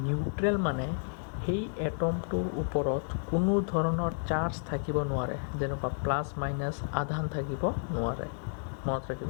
neutral মানে সেই এটমটোৰ ওপৰত কোনো ধৰণৰ চাৰ্জ থাকিব নোৱাৰে যেনেকুৱা প্লাছ মাইনাছ আধান থাকিব নোৱাৰে মনত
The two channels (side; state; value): right; silent; digital silence